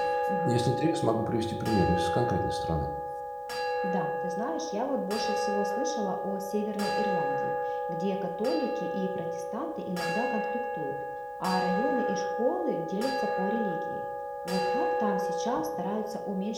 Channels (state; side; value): identical; both; correlation 1.00